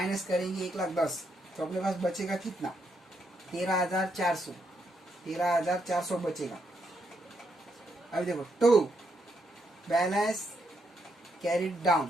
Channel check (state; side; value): normal; both; correlation 0.78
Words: करेंगे 1,10,000 तो अपने पास बचेगा कितना 13,400, 13,400 बचेगा। अभी देखो 2 बैलेंस कैरिड